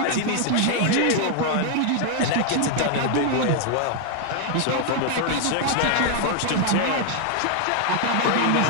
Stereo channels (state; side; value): different; both; correlation 0.00